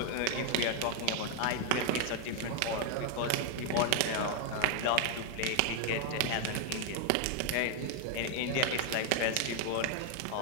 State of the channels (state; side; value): different; both; correlation 0.00